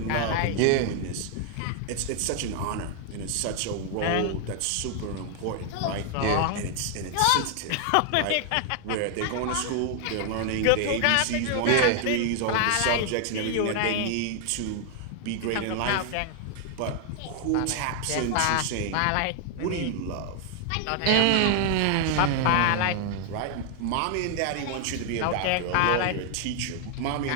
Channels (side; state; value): both; different; correlation 0.00